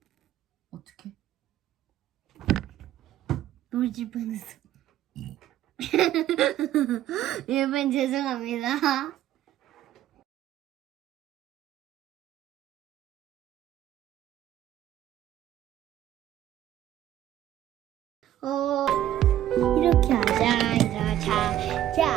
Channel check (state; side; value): quieter; left; 12.4 dB